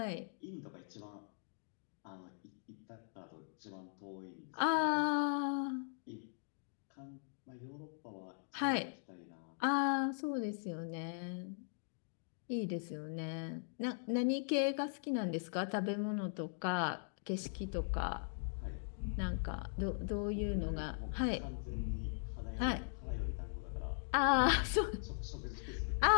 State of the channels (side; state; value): right; silent; digital silence